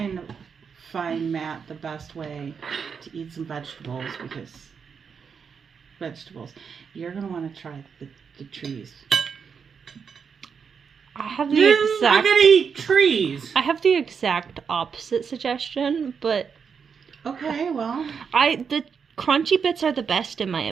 to find Matt the best way to eat some vegetables because you're going to want to try the trees. I have the I'm exact... gonna eat trees. I have the exact opposite suggestion, but... Okay, well... The crunchy bits are the best in my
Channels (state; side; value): quieter; left; 6.3 dB